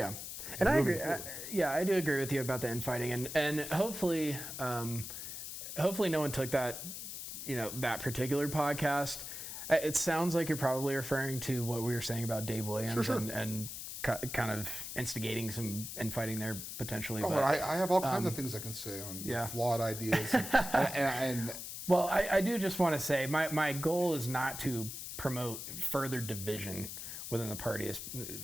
And I agree. I do agree with you about the infighting, and hopefully no one took that, that particular podcast. It sounds like you're probably referring to what we were saying about Dave Williams and kind of instigating some infighting there potentially. Oh, but I have all kinds of things I can say on flawed ideas. and well, I do just want to say my goal is not to promote further division within the party,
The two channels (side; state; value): left; noise; hiss, 8 dB below the sound